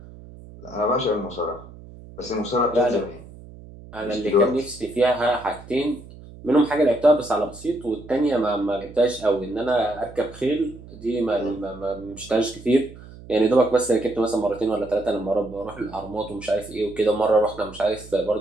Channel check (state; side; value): noise; right; hum, 18 dB below the sound